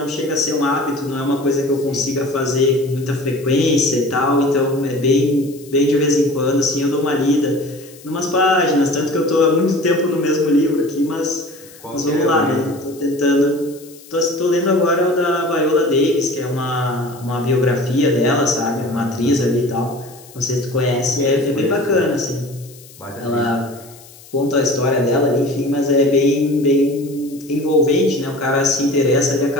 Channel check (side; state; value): left; noise; hiss, 22 dB below the sound